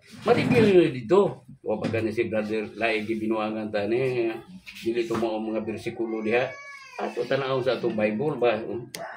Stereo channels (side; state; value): both; identical; correlation 1.00